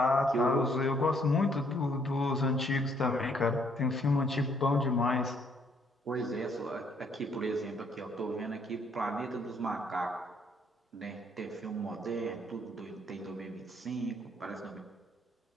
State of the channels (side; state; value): both; normal; correlation 0.67